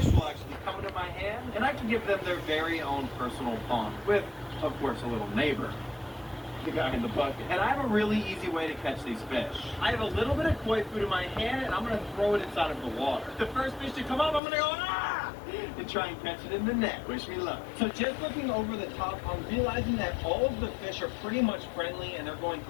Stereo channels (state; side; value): drops out; right; at 14.4 s